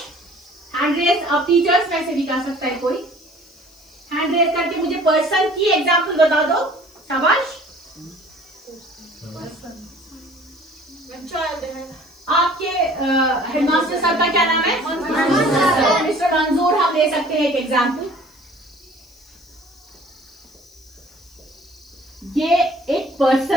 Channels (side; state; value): left; noise; hiss, 29 dB below the sound